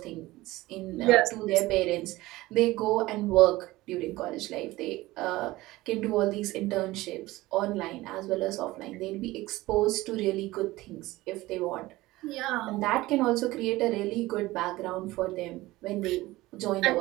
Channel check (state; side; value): quieter; left; 18.6 dB